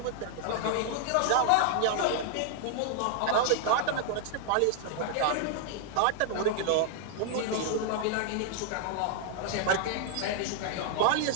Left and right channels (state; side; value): different; both; correlation 0.00